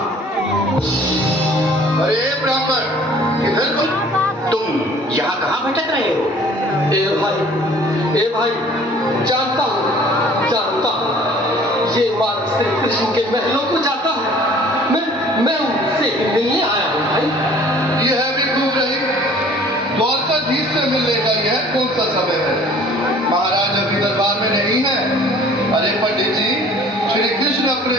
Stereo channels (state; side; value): normal; both; correlation 0.52